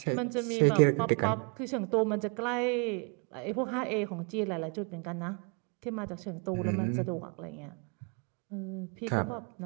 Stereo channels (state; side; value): quieter; left; 35.4 dB